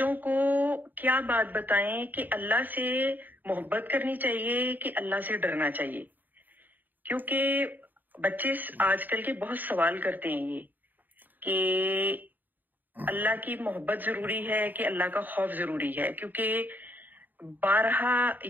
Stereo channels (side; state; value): left; late; 0.088 ms